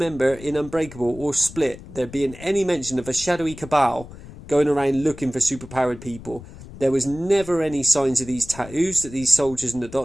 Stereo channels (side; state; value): left; noise; rumble, 16 dB below the sound